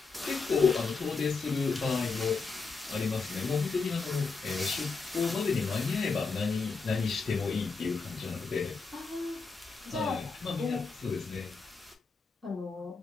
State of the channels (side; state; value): right; quieter; 4.5 dB